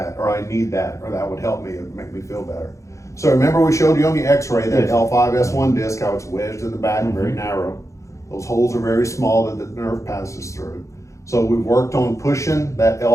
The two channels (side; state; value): right; late; 0.15 ms